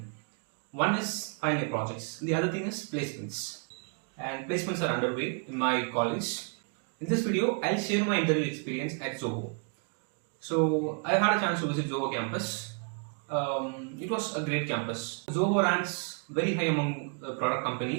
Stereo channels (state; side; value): quieter; left; 38.8 dB